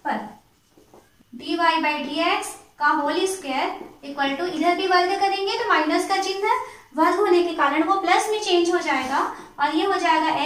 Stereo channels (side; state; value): both; identical; correlation 1.00